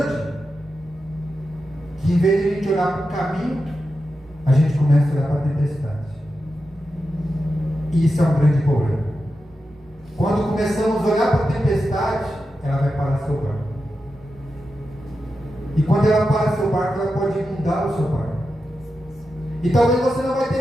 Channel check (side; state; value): both; normal; correlation 0.89